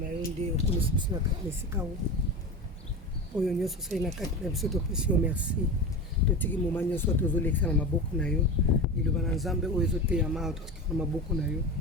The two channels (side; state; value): both; normal; correlation 0.27